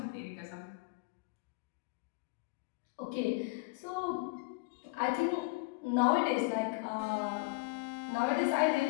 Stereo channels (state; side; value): quieter; right; 27.0 dB